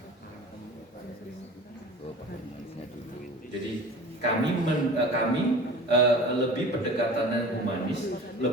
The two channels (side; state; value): both; normal; correlation 0.39